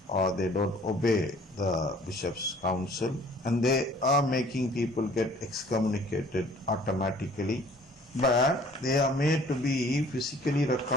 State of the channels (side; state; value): both; normal; correlation 0.54